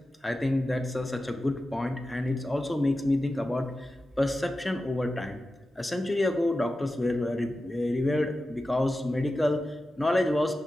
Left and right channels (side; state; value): both; normal; correlation 0.93